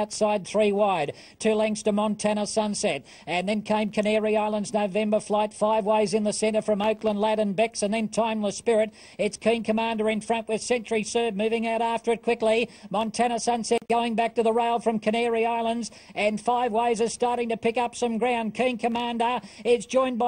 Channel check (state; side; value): identical; both; correlation 1.00